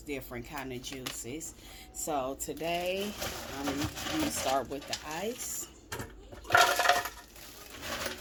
kind of juices. So today, we start with the ice.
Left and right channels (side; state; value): both; identical; correlation 1.00